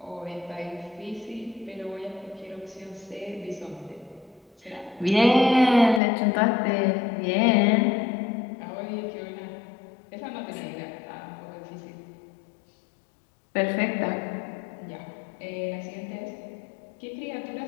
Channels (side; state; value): right; drops out; at 6.0 s